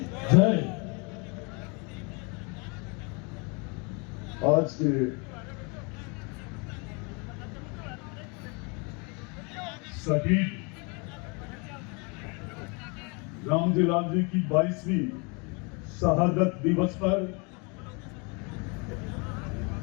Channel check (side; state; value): right; quieter; 32.0 dB